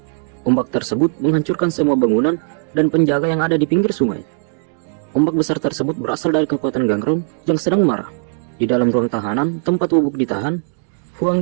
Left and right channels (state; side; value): silent; left; digital silence